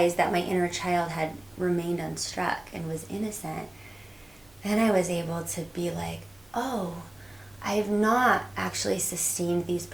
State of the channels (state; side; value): noise; right; hum, 30 dB below the sound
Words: that my inner child had remained unstruck and was innocent, then I was able to be like, oh, I've not actually sustained these